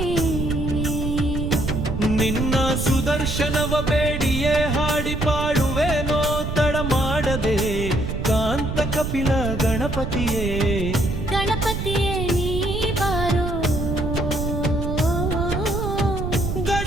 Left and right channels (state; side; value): noise; right; rumble, 3 dB below the sound